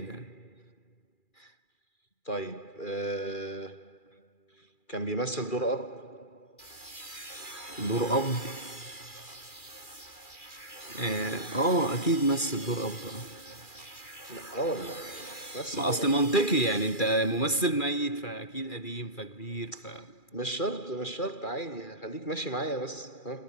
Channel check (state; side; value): late; right; 2.4 ms